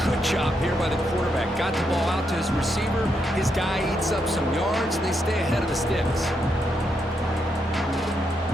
good job here by the quarterback. Got the ball out to his receiver. His guy eats up some yards, and they stay ahead of the sticks.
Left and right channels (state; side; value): normal; both; correlation 0.80